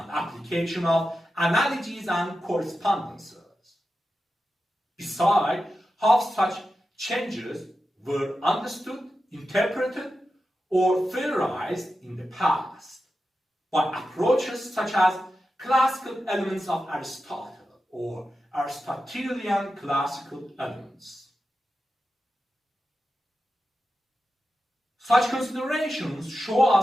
application of analogies and correspondences. Besides, how such changes were understood, interpreted, or theorized in the past by approaches such as classical elements of Aristotle or Aristotelian classical elements. Such considerations show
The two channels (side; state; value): both; normal; correlation 0.91